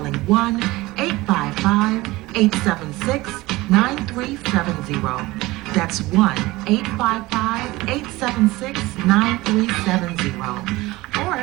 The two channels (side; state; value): left; quieter; 19.9 dB